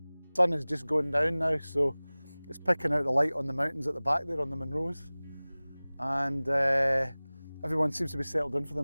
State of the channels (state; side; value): inverted; both; correlation -0.99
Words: The sun is just going down now, so it's picking out the light on the mountains at the back there on the Munros, and everyone seems to be settled in for the